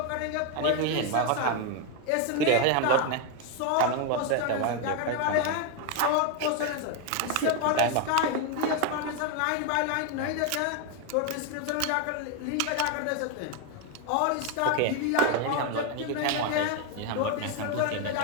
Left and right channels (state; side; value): different; both; correlation 0.02